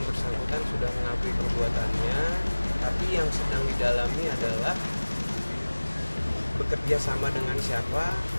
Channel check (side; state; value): both; inverted; correlation -1.00